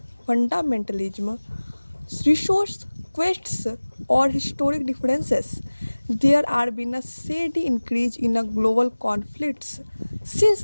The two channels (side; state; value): both; inverted; correlation -1.00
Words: fundamentalism, resource quests, or historic differences. There have been a steady increase in a global conflicts since